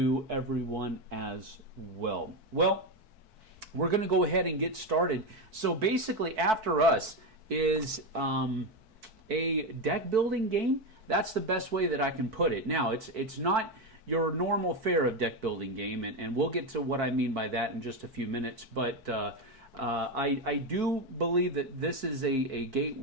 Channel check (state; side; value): late; left; 4.6 ms